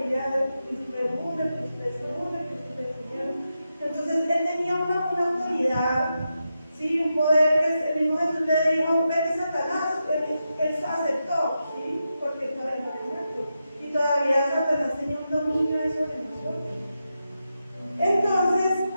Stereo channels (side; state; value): both; inverted; correlation -0.88